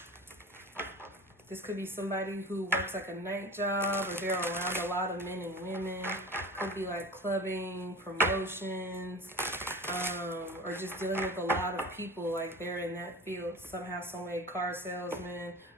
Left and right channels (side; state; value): both; normal; correlation 0.35